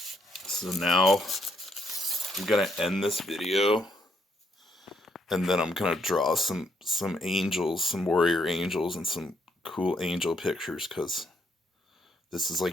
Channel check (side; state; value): both; normal; correlation 0.74